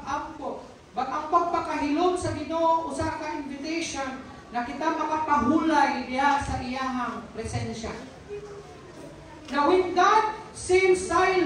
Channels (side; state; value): both; identical; correlation 1.00